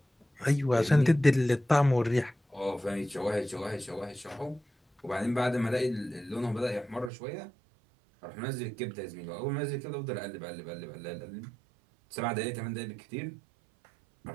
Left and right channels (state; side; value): drops out; left; at 7.1 s